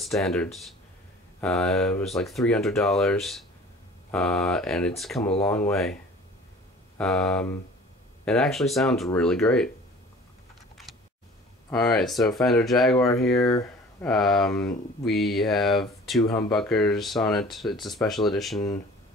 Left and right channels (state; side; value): normal; both; correlation 0.46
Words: It was like $300, and it's come a long way. It actually sounds really great. Alright, so Fender Jaguar here. We have 2 humbuckers on it. It's a special edition.